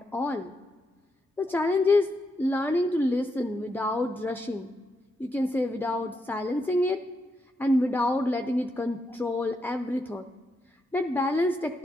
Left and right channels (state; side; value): normal; both; correlation 0.82